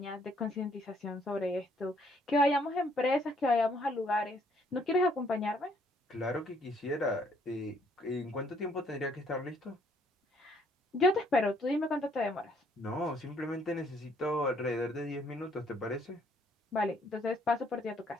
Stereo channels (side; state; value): both; normal; correlation 0.66